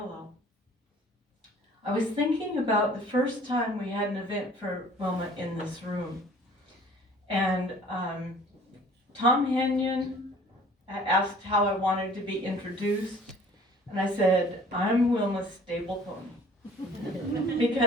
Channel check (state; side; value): normal; both; correlation 0.51